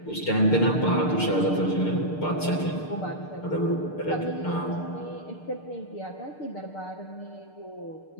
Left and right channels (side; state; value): right; late; 6.6 ms